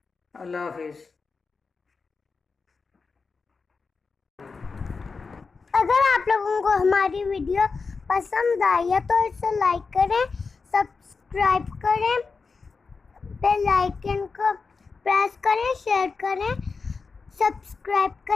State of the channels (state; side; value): quieter; right; 4.7 dB